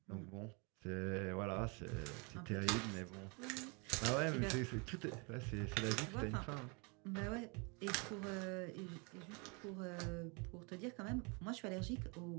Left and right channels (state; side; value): quieter; left; 32.2 dB